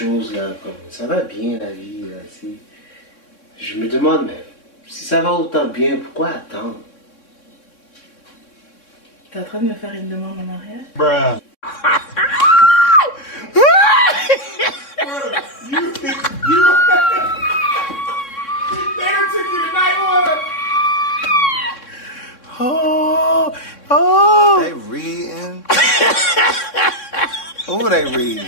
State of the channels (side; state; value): right; late; 3.6 ms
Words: là, comme ça va bien la vie là, tu sais. Je me demande, mais si ça va autant bien, pourquoi attendre? T'es en train de me faire une demande en mariage? Bruh. They reading. Who they